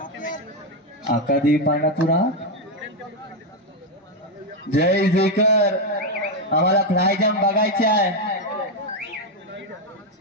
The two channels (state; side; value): normal; both; correlation 0.05